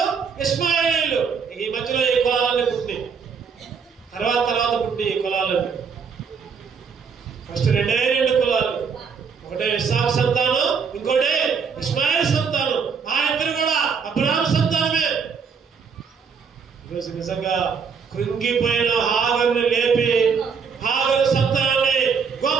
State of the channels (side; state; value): left; quieter; 6.0 dB